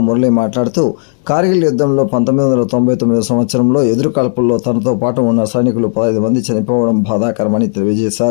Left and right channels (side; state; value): right; silent; digital silence